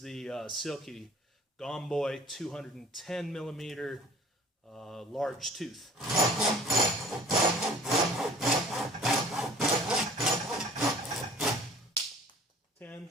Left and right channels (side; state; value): both; normal; correlation 0.49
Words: the Silky Gomboy 210 millimeter large tooth. 10